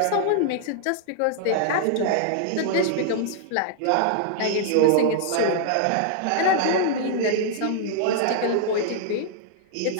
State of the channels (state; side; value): different; both; correlation -0.01